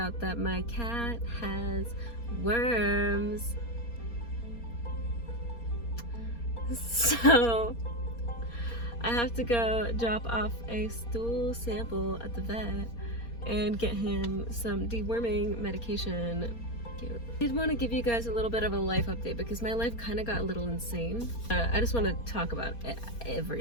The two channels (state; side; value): late; right; 4.3 ms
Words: that my cat has worms. So I have to go drop off a stool sample at the vet and get him some deworming medication. Cute. I did want to give you guys a little bit of a life update because my life kind of got a little insane. I just want to talk about